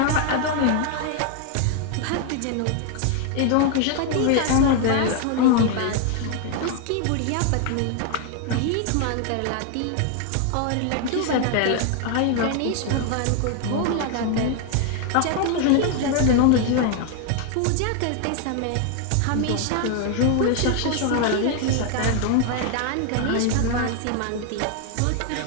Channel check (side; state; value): both; different; correlation 0.00